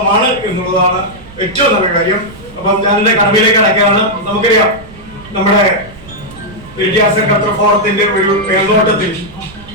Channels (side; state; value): right; noise; rumble, 19 dB below the sound